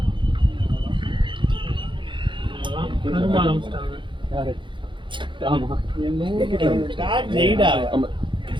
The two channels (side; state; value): left; late; 0.23 ms